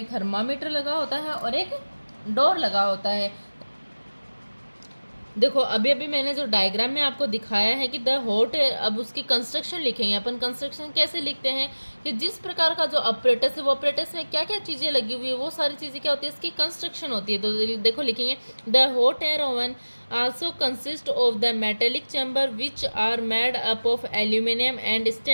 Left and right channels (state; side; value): inverted; both; correlation -1.00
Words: थर्मामीटर लगा होता है और एक डोर लगा होता है। देखो अभी मैंने जो डायग्राम में आपको दिखाया है कि द हॉट एयर, अब उसकी कंस्ट्रक्शन लिखेंगे अपन। कंस्ट्रक्शन कैसे लिखते हैं कि जिस प्रकार का जो ऑपरेटस है वो ऑपरेटस में क्या क्या चीज़ें लगी हुई है वो सारी चीज़ें क्या होती है, इसकी कंस्ट्रक्शन होती है। तो देखो लिखेंगे the hot air oven also consist of the metallic chamber which are made up of aluminium and